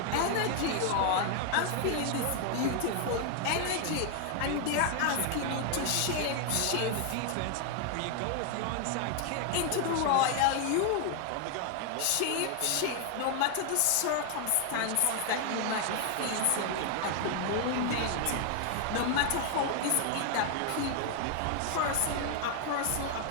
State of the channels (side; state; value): both; different; correlation 0.00